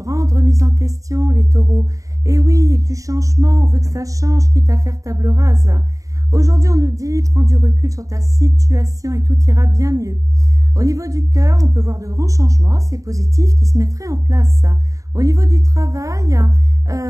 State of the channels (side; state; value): left; late; 0.16 ms